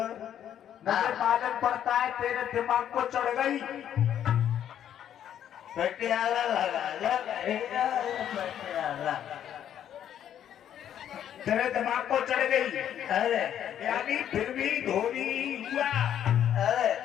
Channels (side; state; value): right; quieter; 10.1 dB